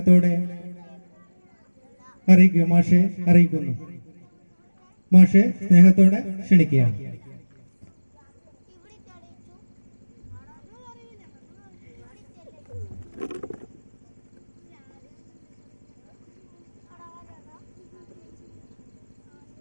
മാഷെ അറിയിക്കുന്നു. മാഷെ സ്നേഹത്തോടെ ക്ഷണിക്കുകയാണ്.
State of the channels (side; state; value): both; inverted; correlation -1.00